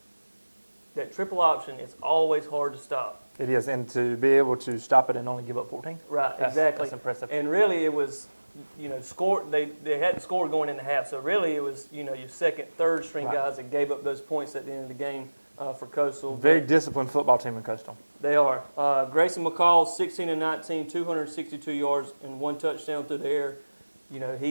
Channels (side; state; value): both; inverted; correlation -1.00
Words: option is always hard to stop. It is, and to be able to stop it and only give up 14. Right, exactly. That's impressive. And really, it was, score. They hadn't scored going into half, so really it was, your second, third string guys that gave up those points at the end of the game for Coastal. Very disciplined football team in Coastal. They are. Grayson McCall, 16-19, 262 yards and 1 touchdown through the air.